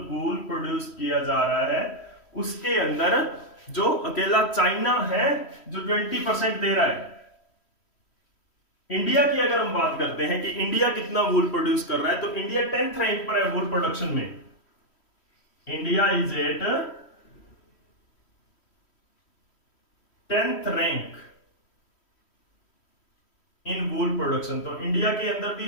वूल प्रोड्यूस किया जा रहा है उसके अंदर जो अकेला चाइना है जो 20% दे रहा है। इंडिया की अगर हम बात करते हैं कि इंडिया कितना वूल प्रोड्यूस कर रहा है, तो इंडिया 10th रैंक पर है वूल प्रोडक्शन में। India is at 10th rank in wool production. तो इंडिया के अंदर भी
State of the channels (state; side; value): late; right; 3.1 ms